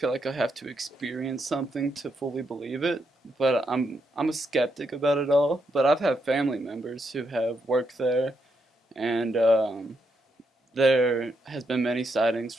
like I have to experience something to fully believe it, but I'm a skeptic about it all. But I've had family members who have worked there, and there has been many sightings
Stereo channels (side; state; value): both; normal; correlation 0.79